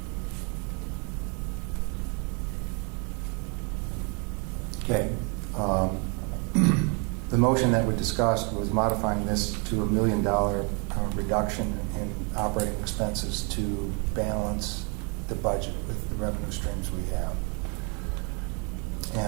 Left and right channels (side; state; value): left; quieter; 35.1 dB